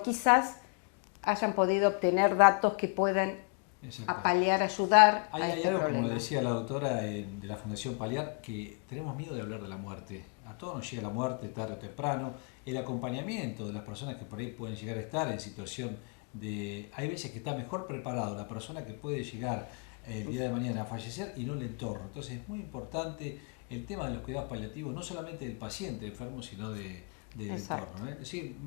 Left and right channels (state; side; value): quieter; right; 37.1 dB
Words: quizás hayan podido obtener datos que puedan paliar, ayudar. Hay algo, como le decía la doctora de la Fundación Paliar, que tenemos miedo de hablar de la muerte. A todos nos llega la muerte tarde o temprano. El acompañamiento de las personas que por ahí pueden llegar a estar en situación de... Hay veces que está mejor preparado la persona que puede llegar el día de mañana a fallecer y no el entorno. Entonces es muy importante el tema de los cuidados paliativos, no solamente del paciente enfermo, sino del entorno. Sí,